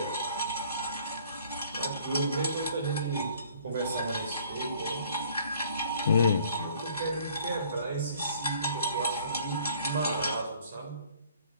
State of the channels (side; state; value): both; inverted; correlation -0.56